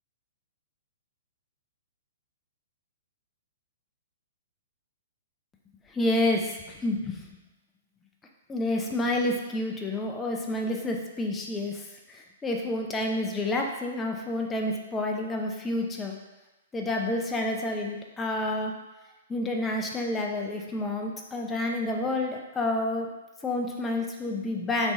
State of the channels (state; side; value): normal; both; correlation 0.35